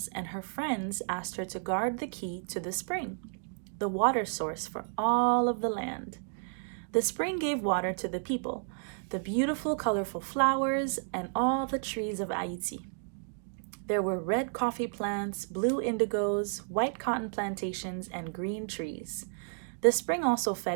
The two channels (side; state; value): left; silent; digital silence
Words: and her friends asked her to guard the key to the spring, the water source for all of the land. The spring gave water to the people, the beautiful, colorful flowers, and all the trees of Haiti. There were red coffee plants, blue indigos, white cotton plantations, and green trees. The spring also